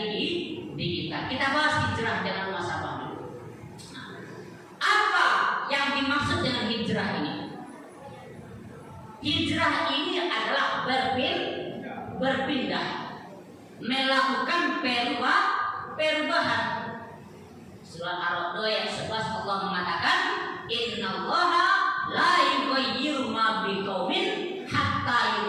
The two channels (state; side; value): identical; both; correlation 1.00